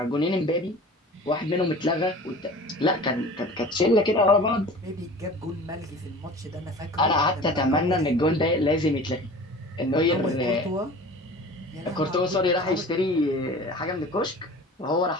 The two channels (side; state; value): both; normal; correlation 0.41